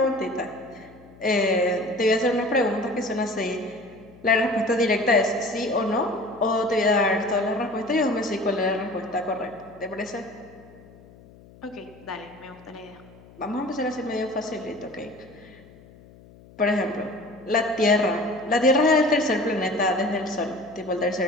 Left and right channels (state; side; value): noise; left; hum, 23 dB below the sound